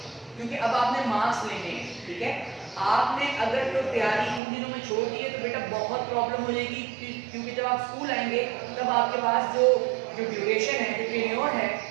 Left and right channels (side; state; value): left; drops out; at 4.4 s